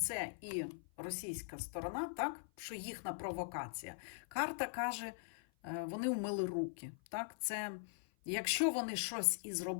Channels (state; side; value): silent; right; 50 dB below the other